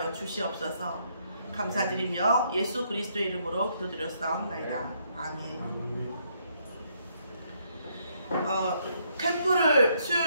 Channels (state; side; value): inverted; both; correlation -0.72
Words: 주시옵소서. 감사드리며 예수 그리스도의 이름으로 기도드렸사옵나이다. 아멘. 캠프를